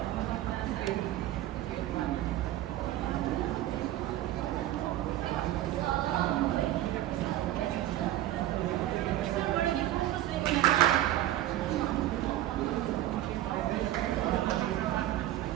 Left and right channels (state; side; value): quieter; left; 14.0 dB